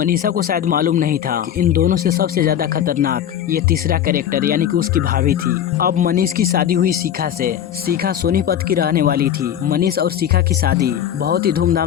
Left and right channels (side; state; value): right; quieter; 10.1 dB